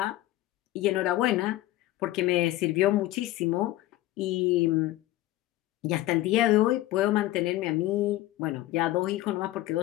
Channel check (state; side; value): quieter; right; 16.1 dB